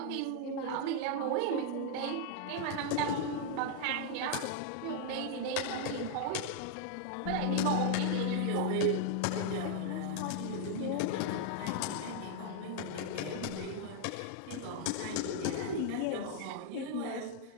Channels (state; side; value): different; both; correlation 0.00